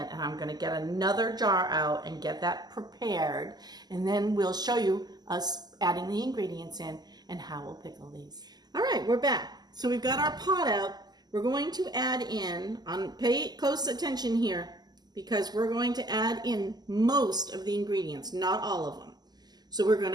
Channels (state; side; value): late; left; 0.20 ms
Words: and I'm going to get another jar out and get that prepared, and then we'll show you us adding the ingredients in and how we'll pickle these. All right, we're back. So we've got our pot out. We're going to add in, pay close attention here, because we're going to add in most of the ingredients, not all of them. So we're going